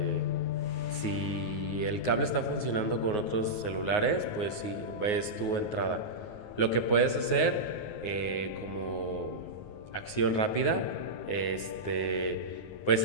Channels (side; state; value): right; late; 9.5 ms